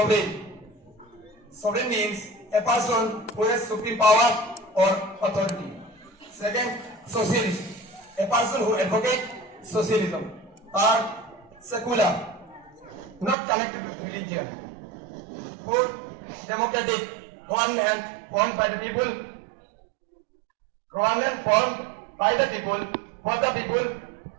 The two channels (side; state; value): left; drops out; at 13.4 s